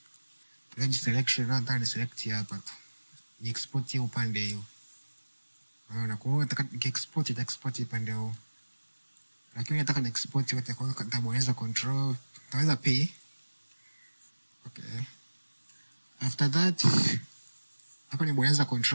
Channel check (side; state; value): both; inverted; correlation -1.00